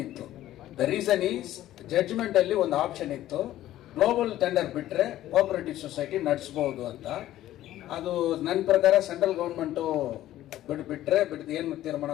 ಇತ್ತು. ದ ರೀಸನ್ ಈಸ್ ಜಡ್ಜ್ಮೆಂಟ್ ಅಲ್ಲಿ ಒಂದು ಆಪ್ಷನ್ ಇತ್ತು, ಗ್ಲೋಬಲ್ ಟೆಂಡರ್ ಬಿಟ್ರೆ ಕೋಆಪರೇಟಿವ್ ಸೊಸೈಟಿ ನಡೆಸಬಹುದು ಅಂತ. ಅದು ನನ್ನ ಪ್ರಕಾರ ಸೆಂಟ್ರಲ್ ಗೌರ್ಮೆಂಟು ಬಿಟ್ರೆ ಏನು ತೀರ್ಮಾನ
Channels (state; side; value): quieter; right; 13.8 dB